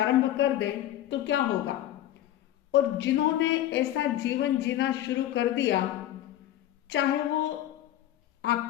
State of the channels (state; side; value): quieter; right; 13.0 dB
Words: कर दे तो क्या होगा। और जिन्होंने ऐसा जीवन जीना शुरू कर दिया, चाहे वो